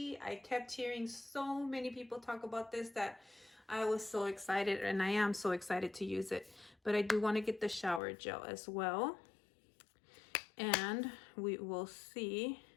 I kept hearing so many people talk about this that I was so excited, and I am so excited to use it. But I do want to get the shower gel as well. And we will see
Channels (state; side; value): drops out; right; at 8.0 s